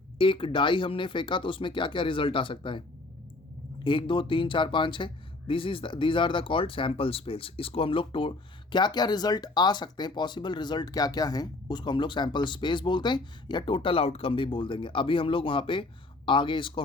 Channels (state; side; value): quieter; right; 3.1 dB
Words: एक डाई हमने फेंका तो उसमें क्या क्या रिजल्ट आ सकता है, 1 2 3 4 5 6, these are the called sample space. इसको हम लोग क्या क्या रिजल्ट आ सकते हैं, पॉसिबल रिजल्ट क्या क्या हैं, उसको हम लोग सैम्पल स्पेस बोलते हैं, या टोटल आउटकम भी बोल देंगे। अभी हम लोग वहाँ पे आगे इसको